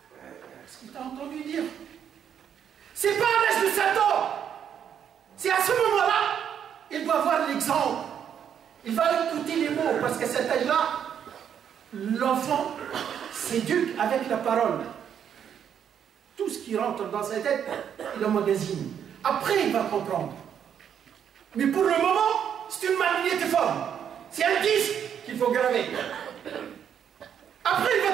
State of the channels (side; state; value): left; quieter; 8.6 dB